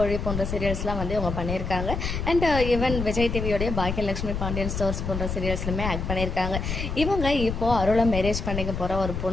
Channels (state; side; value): noise; left; rumble, 4 dB below the sound